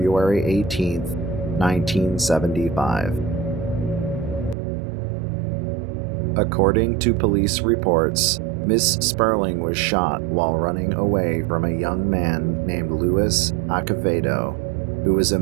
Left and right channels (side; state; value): left; drops out; at 4.5 s